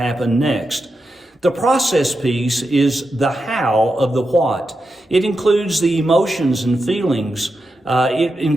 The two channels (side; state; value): both; normal; correlation 0.88